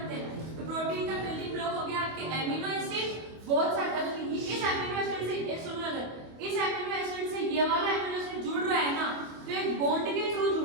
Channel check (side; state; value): left; late; 25 ms